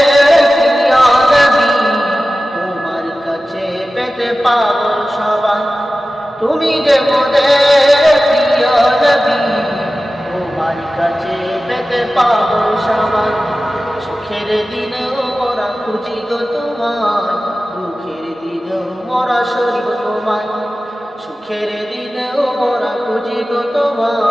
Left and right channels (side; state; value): both; normal; correlation 0.95